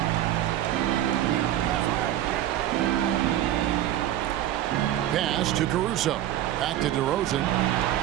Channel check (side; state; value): left; quieter; 12.6 dB